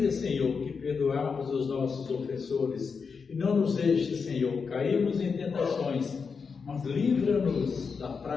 Senhor, que perdoamos os nossos ofensores. E não nos deixe, Senhor, cairmos em tentações, mas livra-nos da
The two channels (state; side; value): quieter; right; 5.5 dB